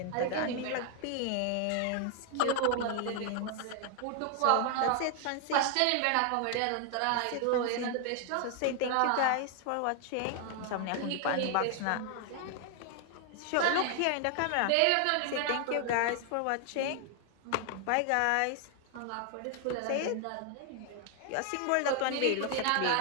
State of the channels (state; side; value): different; both; correlation 0.00